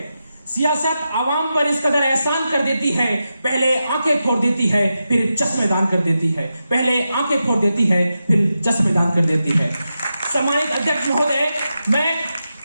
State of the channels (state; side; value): inverted; both; correlation -0.89